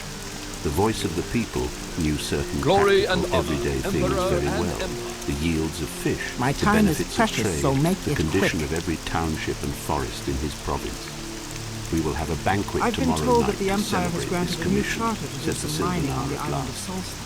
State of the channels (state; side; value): identical; both; correlation 1.00